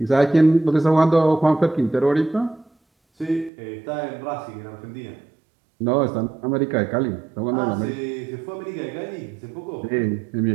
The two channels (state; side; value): drops out; left; at 3.5 s